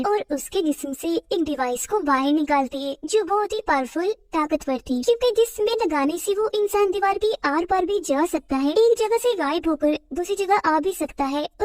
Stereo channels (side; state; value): both; identical; correlation 1.00